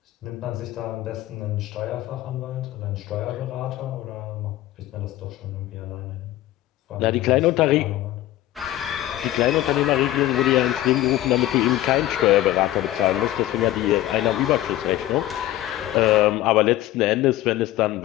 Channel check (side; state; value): right; quieter; 14.9 dB